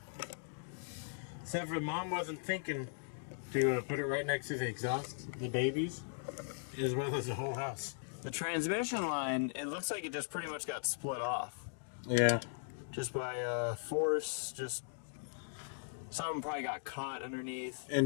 Except for Mom wasn't thinking to put it right next to the exhaust, the babies, as well as the whole house. The transmission line, it looks like it just pretty much got split off. Yeah. Just by force, just something probably got caught underneath.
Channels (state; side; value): silent; right; digital silence